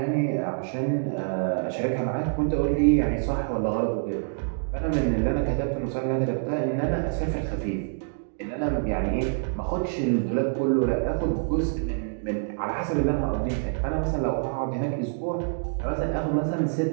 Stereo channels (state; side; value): silent; left; digital silence